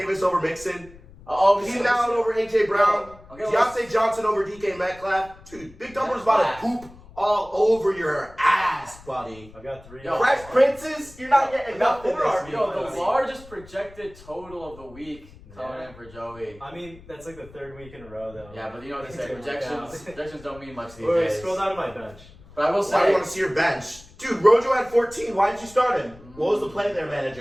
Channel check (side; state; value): left; noise; rumble, 21 dB below the sound